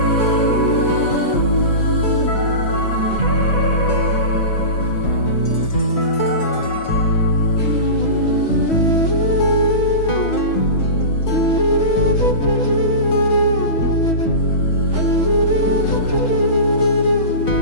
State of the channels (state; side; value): late; right; 6.2 ms